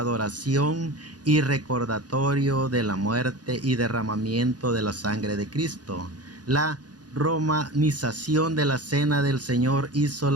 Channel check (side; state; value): left; late; 0.69 ms